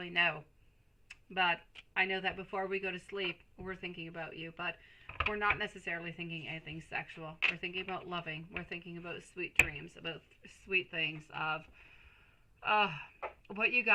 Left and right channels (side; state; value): both; identical; correlation 1.00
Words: know. But I know that before we go to sleep, we're thinking about you. But we're not necessarily thinking anything sexual. We're thinking about loving. We're thinking about sweet dreams, about sweet things of what you